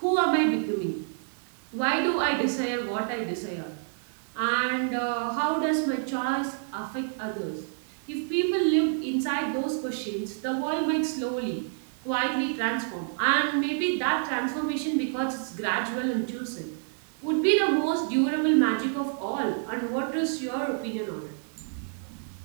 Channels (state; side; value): silent; left; digital silence